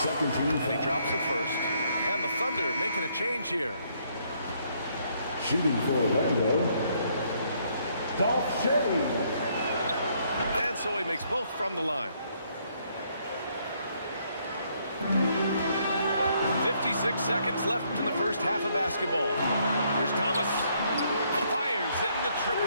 team foul. And he drops it first. And the Thunder making a change here. Shooting for Orlando. SHAI. And so he makes both from the line. 56 seconds left in the first half of basketball. Here's Thomas. Fires in the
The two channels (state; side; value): inverted; both; correlation -0.70